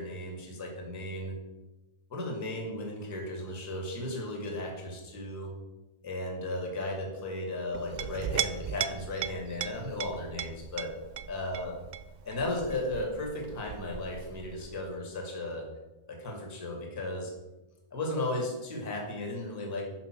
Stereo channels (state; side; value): late; left; 2.1 ms